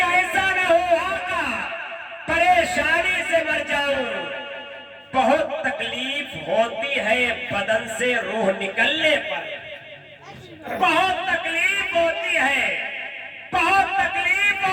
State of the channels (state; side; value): identical; both; correlation 1.00